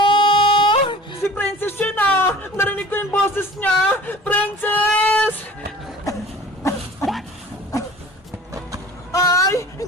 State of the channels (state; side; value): normal; both; correlation 0.44